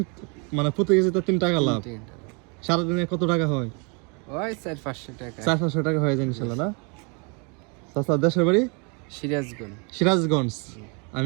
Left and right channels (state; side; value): quieter; left; 33.8 dB